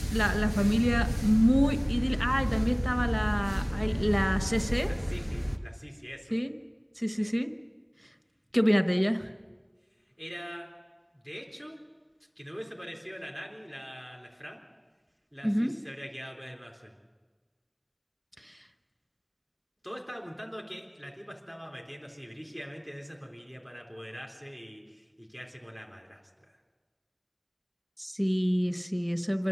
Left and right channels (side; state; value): both; identical; correlation 1.00